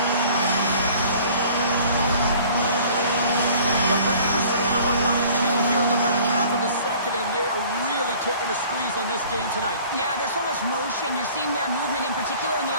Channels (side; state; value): both; inverted; correlation -0.50